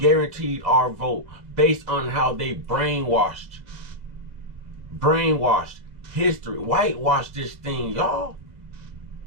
our vote based on how they brainwashed history, whitewashed this thing, y'all.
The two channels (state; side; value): late; left; 2.1 ms